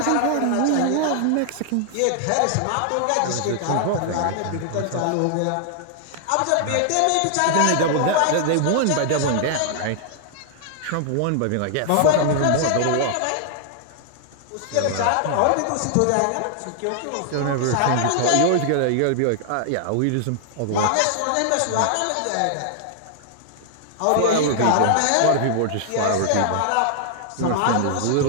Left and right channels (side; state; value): both; different; correlation -0.01